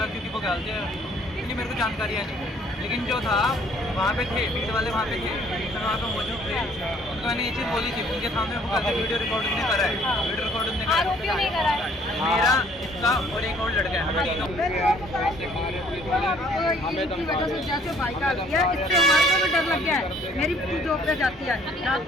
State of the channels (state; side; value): normal; both; correlation 0.60